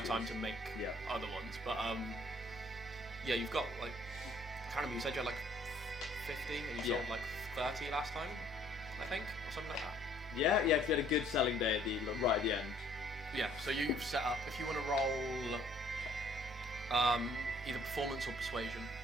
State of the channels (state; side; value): normal; both; correlation 0.60